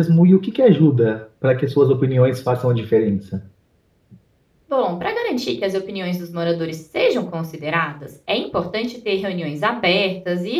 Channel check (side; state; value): both; identical; correlation 1.00